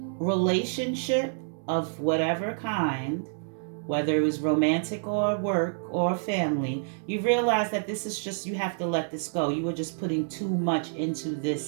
relationship of whatever kind, whether it was romantic or work or family, you realize that this is just, you have to let this go. You were just putting too much into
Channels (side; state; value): left; silent; digital silence